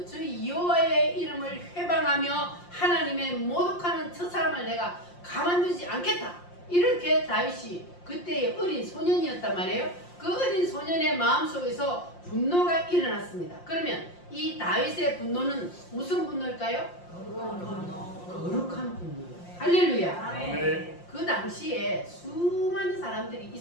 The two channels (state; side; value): late; right; 5.7 ms